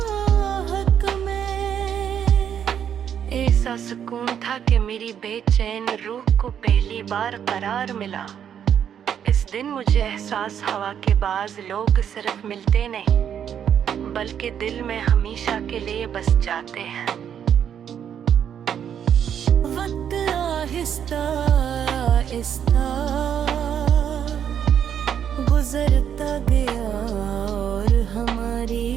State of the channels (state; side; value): quieter; left; 8.8 dB